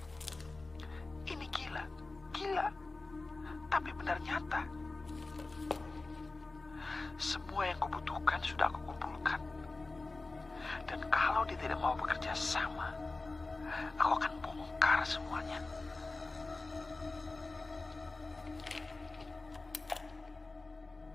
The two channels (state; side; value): quieter; right; 3.4 dB